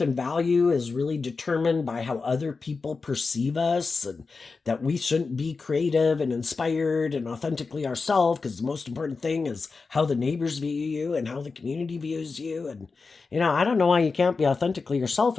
and value is really determined by how other people perceive us, and that we shouldn't be creative and inspired and authentically ourselves, because the most important thing is how the neighbors view you and how the community views you. And I don't know why you can't be authentically yourself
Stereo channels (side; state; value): right; quieter; 4.4 dB